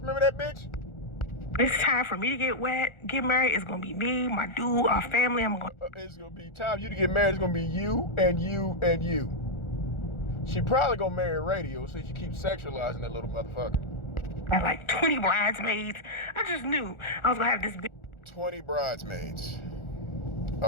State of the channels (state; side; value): late; right; 1.4 ms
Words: that bitch? It's time for me to get married. It's gonna be me, my dude, our family. It's gonna be time for you to get married. It's gonna be you and you and you. She probably gonna marry radio so she keeps sexualizing that little motherfucker. I had like 20 bridesmaids. I just knew I was gonna have this big 20 bridesmaids.